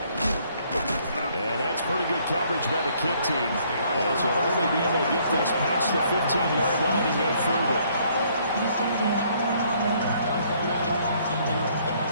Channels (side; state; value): both; inverted; correlation -0.65